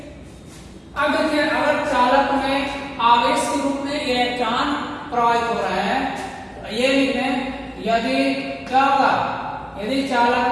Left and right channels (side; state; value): both; identical; correlation 1.00